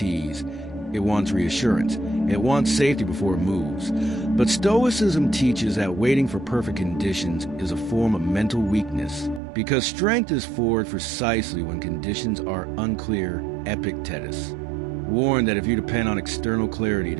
It wants reassurance. It wants safety before it moves. But Stoicism teaches that waiting for perfect conditions is a form of mental weakness, because strength is forged precisely when conditions are unclear. Epictetus warned that if you depend on external clarity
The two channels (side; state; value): left; drops out; at 9.4 s